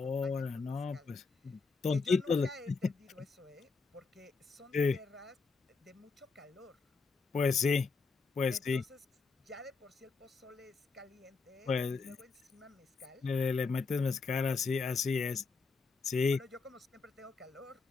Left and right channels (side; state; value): right; quieter; 4.5 dB